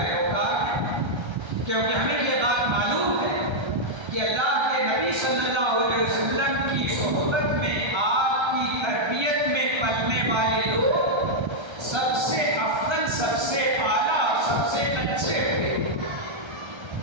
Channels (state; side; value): late; left; 1.3 ms